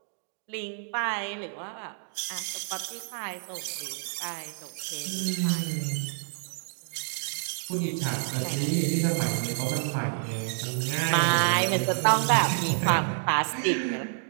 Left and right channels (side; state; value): left; silent; digital silence